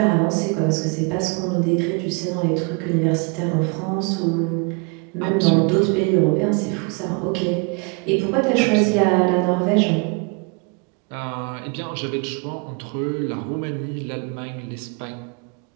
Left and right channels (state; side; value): quieter; left; 33.3 dB